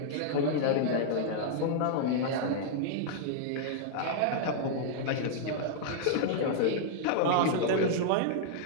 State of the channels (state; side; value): different; both; correlation -0.01